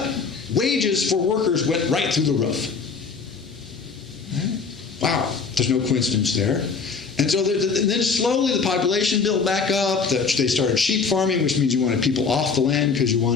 Wages for workers went right through the roof. Wow, there's no coincidence there. And so then slowly the population built back up. They started sheep farming, which means you wanted people off the land because you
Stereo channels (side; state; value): right; quieter; 5.1 dB